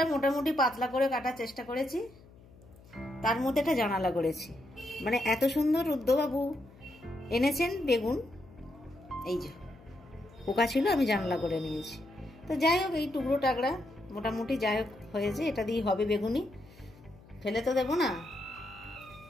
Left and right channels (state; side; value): noise; left; hum, 23 dB below the sound